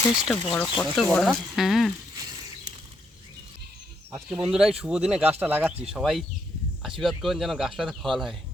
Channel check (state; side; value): normal; both; correlation 0.76